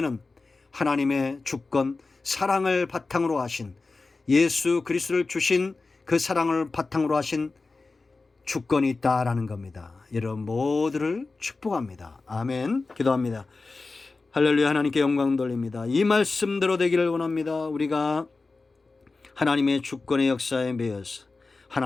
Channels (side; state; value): right; quieter; 3.8 dB